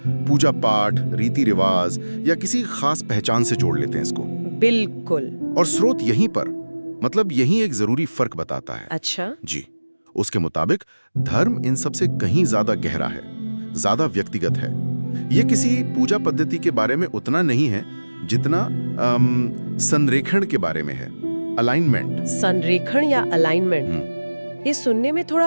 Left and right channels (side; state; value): both; inverted; correlation -1.00